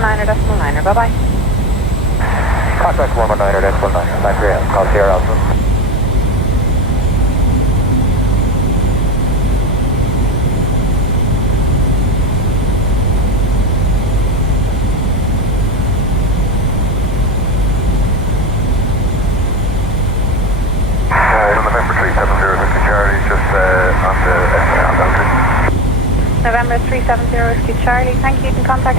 bye-bye. Contact 119er, 9 for you, call Sierra Alpha. November 370 Charlie, just on the November 370 Whiskey Charlie, thank you. You can contact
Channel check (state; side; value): normal; both; correlation 0.25